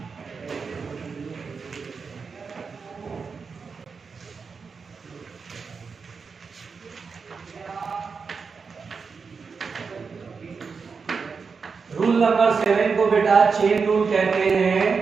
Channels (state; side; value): quieter; left; 5.3 dB